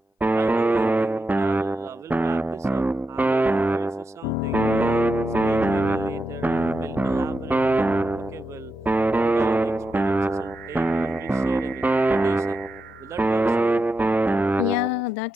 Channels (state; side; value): normal; both; correlation 0.87